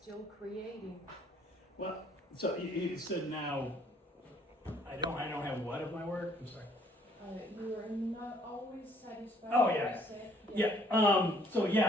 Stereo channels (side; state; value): both; normal; correlation 0.62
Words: creating. Well, so you said now I don't have what of my work? I'm sorry. You are not always satisfied. Oh yeah, So